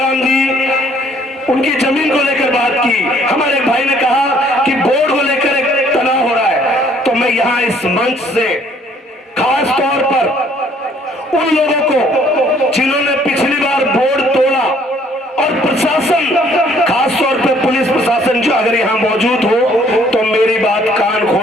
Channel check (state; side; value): normal; both; correlation 0.61